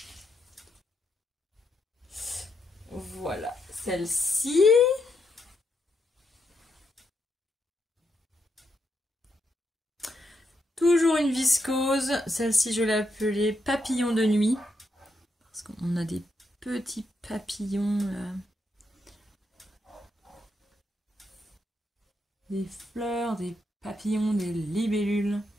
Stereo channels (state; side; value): normal; both; correlation 0.80